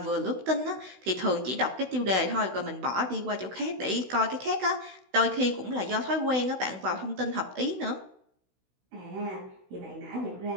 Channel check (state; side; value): late; left; 16 ms